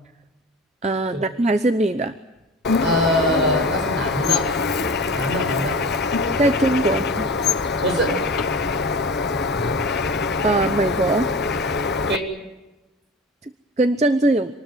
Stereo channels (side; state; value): both; normal; correlation 0.35